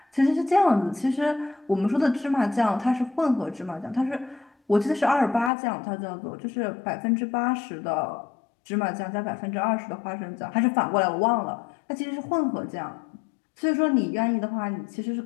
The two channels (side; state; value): right; drops out; at 5.5 s